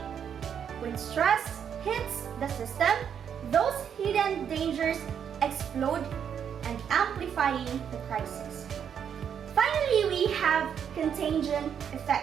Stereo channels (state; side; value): quieter; left; 8.1 dB